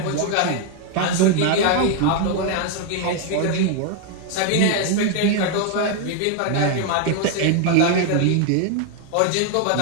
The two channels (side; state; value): both; different; correlation 0.01